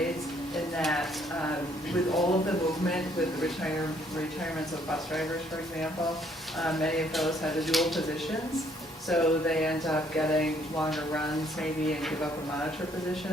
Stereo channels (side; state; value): both; normal; correlation 0.66